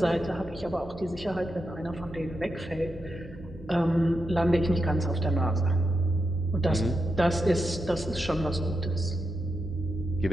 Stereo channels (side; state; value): both; normal; correlation 0.86